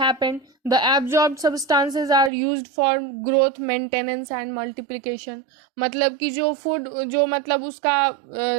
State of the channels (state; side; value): drops out; left; at 2.3 s